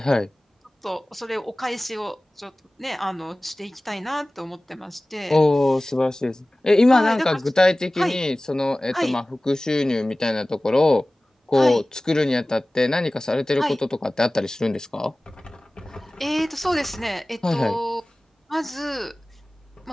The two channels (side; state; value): both; normal; correlation 0.98